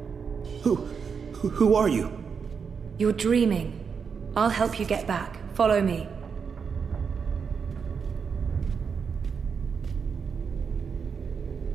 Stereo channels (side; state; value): left; quieter; 6.1 dB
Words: Who are you? You're dreaming. I'll help you get back. Follow me.